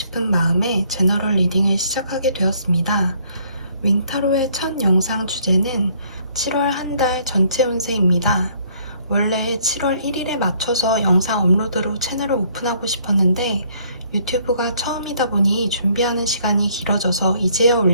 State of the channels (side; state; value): both; inverted; correlation -0.64